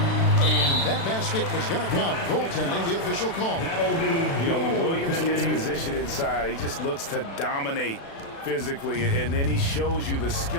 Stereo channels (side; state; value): right; late; 36 ms